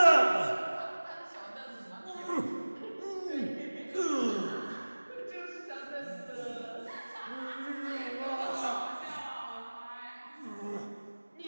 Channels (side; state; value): both; inverted; correlation -1.00